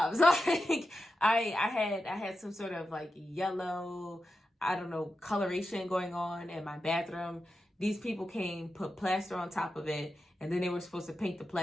Like I had some sort of like yellow, I don't know, coloration going on in my bathroom. These people came, put plaster on top of it, and then they were supposed to paint the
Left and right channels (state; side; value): normal; both; correlation 0.90